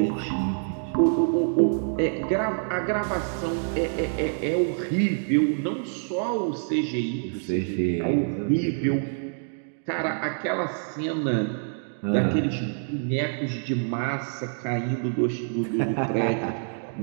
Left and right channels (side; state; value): left; silent; digital silence